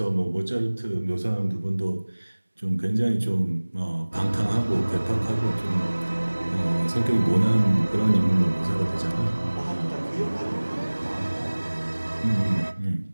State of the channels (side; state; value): both; inverted; correlation -1.00